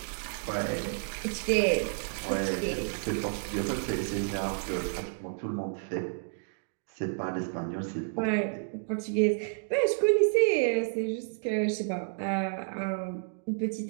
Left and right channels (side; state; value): left; silent; digital silence